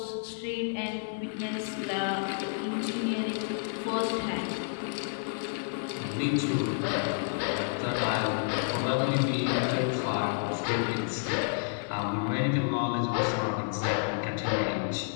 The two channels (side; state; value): right; silent; 58 dB below the other